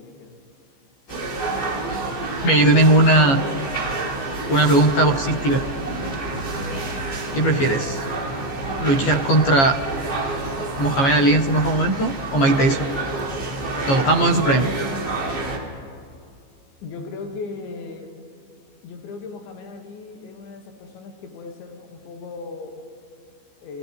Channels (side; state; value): right; late; 15 ms